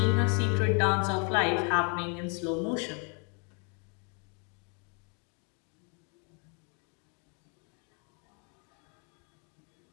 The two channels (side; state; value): right; quieter; 37.1 dB